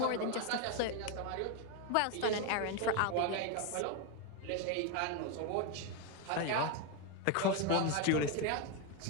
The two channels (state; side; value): different; both; correlation 0.02